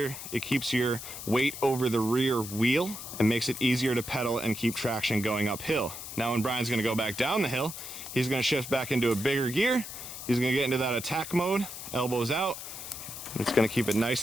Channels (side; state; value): left; noise; hiss, 10 dB below the sound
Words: It keeps your weight over the rear wheel and makes it easier to pedal and keep traction going uphill. Now, when Bryan's going to go back down the hill, he's going to shift back into a bigger gear. He's going to get into that attack mode, elbows out. It's going to keep it nice